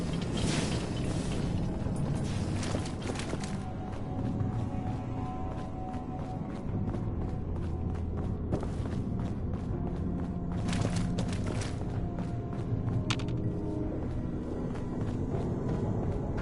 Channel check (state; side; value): identical; both; correlation 1.00